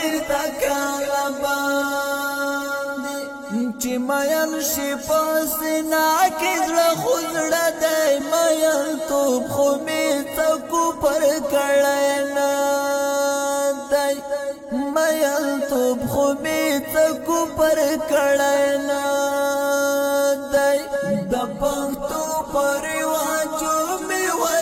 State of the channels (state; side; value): identical; both; correlation 1.00